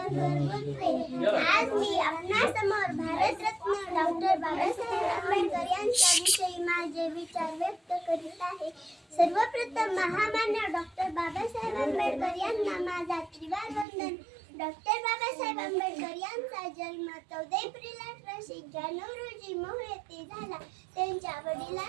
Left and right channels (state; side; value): drops out; left; at 13.9 s